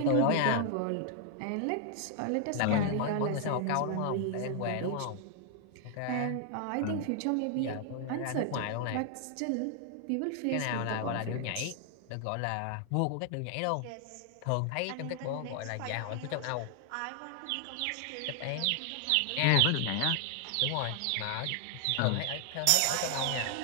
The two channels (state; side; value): different; both; correlation 0.00